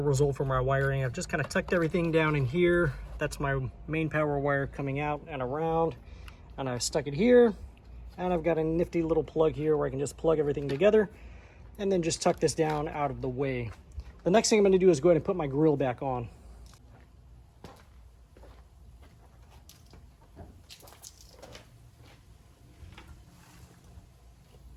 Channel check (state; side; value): identical; both; correlation 1.00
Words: result for my wiring. I've just kind of tucked everything down in here. That's my main power wire coming out and around. And I stuck it here. And I've got a nifty little plug here where I can just plug everything together and then just tuck this down out of the way. The next thing I'm going to do is go ahead and put my grill back on.